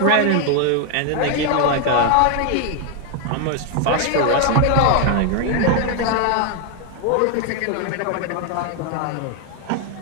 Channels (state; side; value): different; both; correlation 0.01